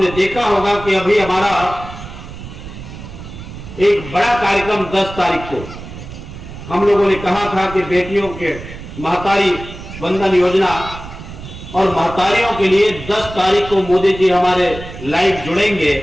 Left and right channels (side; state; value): right; noise; rumble, 13 dB below the sound